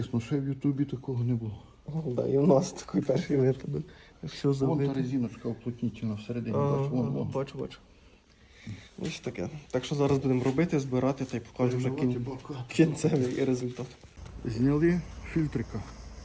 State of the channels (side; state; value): both; identical; correlation 1.00